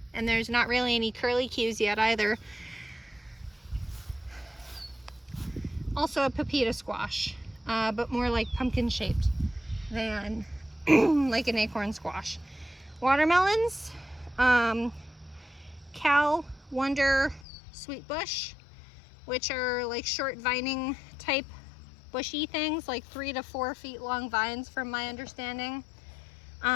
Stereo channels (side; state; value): right; drops out; at 17.4 s